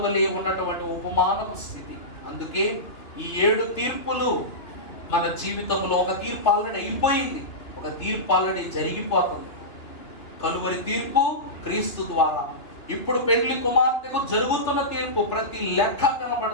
వలె ఉన్నటువంటి ఉపమానపు స్థితి. అందుకే ఈ 7 తీర్పులు మన జీవితంలో, ఒక తీర్పు ఆల్రెడీ అయిపోయింది, ఒక తీర్పు ఆల్రెడీ జరిగిపోతుంది. కలువరి తీర్పు క్రీస్తు ద్వారా. ఇప్పుడు పెండ్లి కుమార్తెకు జరుగుతున్న తీర్పు ప్రతి లెక్క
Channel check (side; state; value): right; late; 2.8 ms